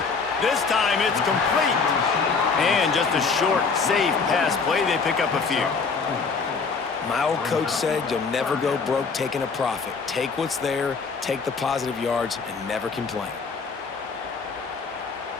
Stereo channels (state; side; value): quieter; right; 5.0 dB